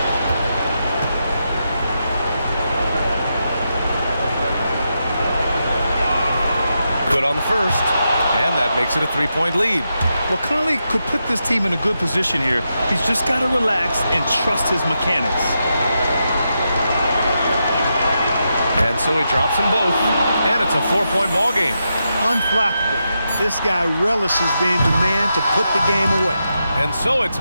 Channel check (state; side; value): inverted; both; correlation -0.85